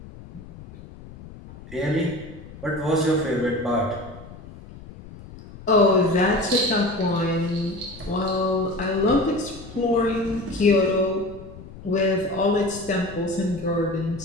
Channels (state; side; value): noise; left; rumble, 17 dB below the sound